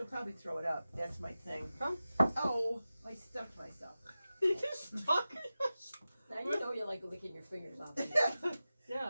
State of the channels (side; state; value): both; inverted; correlation -0.95